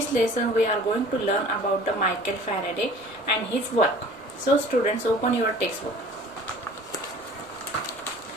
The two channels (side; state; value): left; noise; rumble, 28 dB below the sound